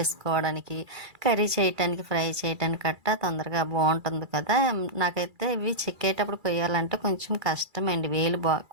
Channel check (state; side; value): late; left; 2.3 ms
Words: కర్రీ చేయటానికి, ఫ్రై చేయటానికి కట్ట తొందరగా బాగుంటుంది కదా. నాకైతే ఇవి చెక్కేటప్పుడు కొయ్యాలంటే కొంచెం కష్టం అండి, వేలు